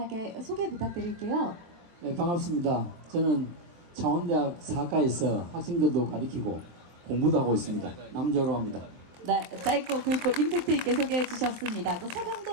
소개 부탁드릴게요. 네, 반갑습니다. 저는 창원대학 사과에서 학생들도 가르치고 공부도 하고 있습니다. 남재호로 합니다. 네, 짧고 굵고 임팩트 있게 소개해 주셨습니다. 또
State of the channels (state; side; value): late; left; 23 ms